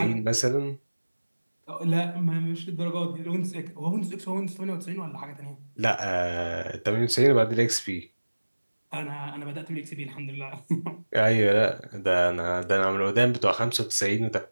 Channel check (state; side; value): inverted; both; correlation -1.00